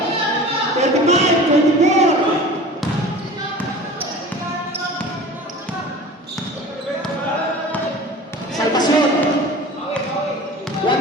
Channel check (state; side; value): normal; both; correlation 0.39